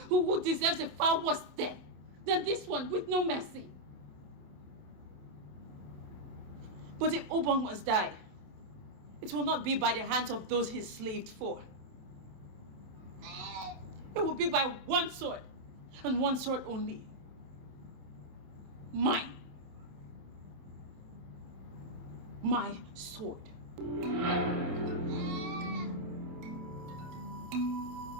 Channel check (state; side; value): late; left; 27 ms